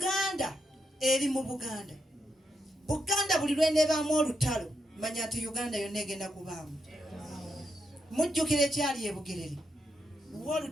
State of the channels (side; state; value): both; normal; correlation 0.83